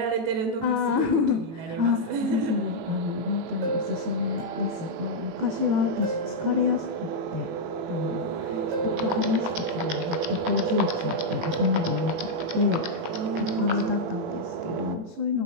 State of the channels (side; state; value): left; late; 18 ms